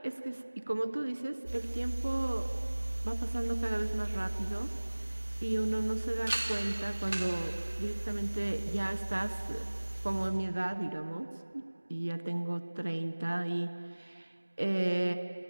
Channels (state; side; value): inverted; both; correlation -1.00